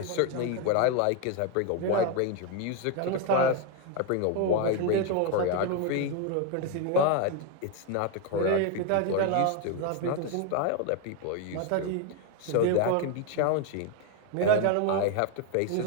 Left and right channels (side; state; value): both; different; correlation 0.02